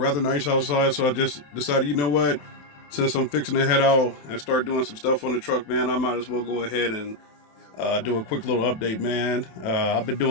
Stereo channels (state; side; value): late; right; 27 ms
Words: nice outside, so I just decided, you know what? Since I'm fixing to head out and start doing some stuff on the truck, man, I might as well go ahead and do a quick little update, man. I've been